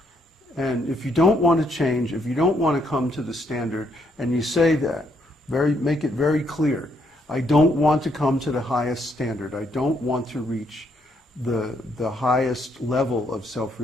And if you don't want to change, if you don't want to come to the standard, and you say that, make it very clear, I don't want to come to the highest standard. I don't want to reach the highest level of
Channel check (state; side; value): normal; both; correlation 0.73